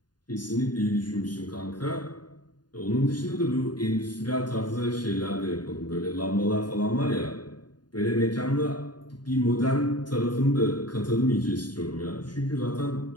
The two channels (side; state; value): right; late; 0.70 ms